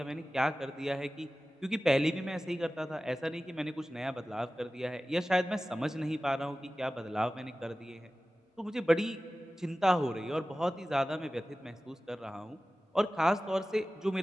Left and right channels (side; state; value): both; normal; correlation 0.96